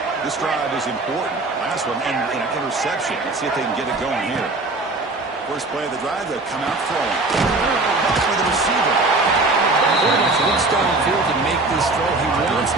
This drive is important. Last one, and an interception. Let's see if they can get it going here. First play of the drive, they'll come out throwing. For the receiver. Quarterback's looks downfield to make this throw. He wants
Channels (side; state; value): left; quieter; 3.2 dB